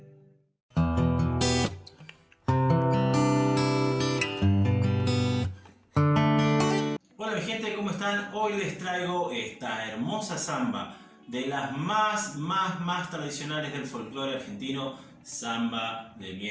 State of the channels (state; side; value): identical; both; correlation 1.00